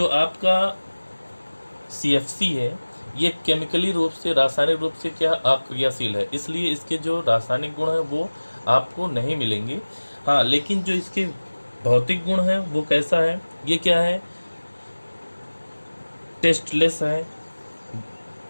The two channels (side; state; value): both; inverted; correlation -1.00